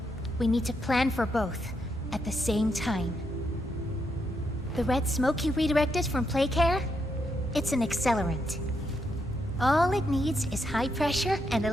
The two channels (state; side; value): normal; both; correlation 0.80